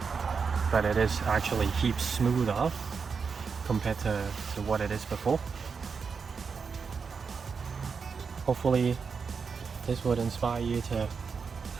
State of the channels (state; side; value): quieter; left; 5.5 dB